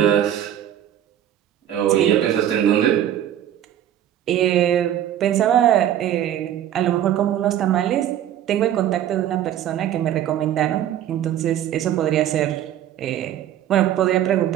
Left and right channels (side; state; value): left; quieter; 11.2 dB